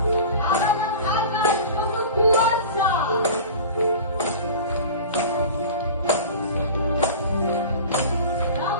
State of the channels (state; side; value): inverted; both; correlation -0.36